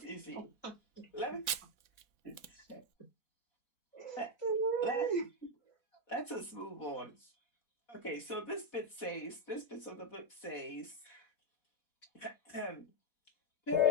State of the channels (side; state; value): right; late; 3.6 ms